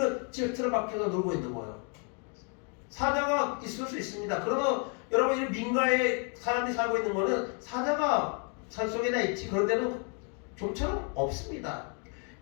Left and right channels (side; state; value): right; quieter; 39.3 dB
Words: 지금 틀어박혀서 놀고 있는 거예요. 사자가 있을 수 있습니다. 그러나 여러분, 이 민가에 사람이 살고 있는 거는 사자가 산속에나 있지, 그런 데는 좀처럼 없습니다.